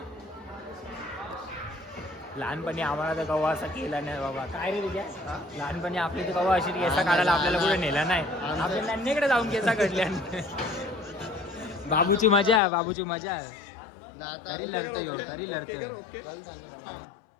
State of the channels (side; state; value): right; drops out; at 12.6 s